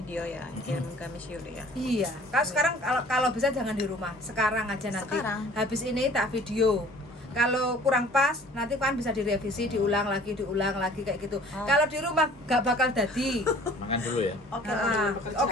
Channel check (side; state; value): both; normal; correlation 0.51